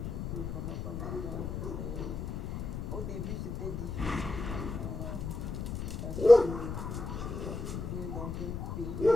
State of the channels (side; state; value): left; noise; rumble, 5 dB below the sound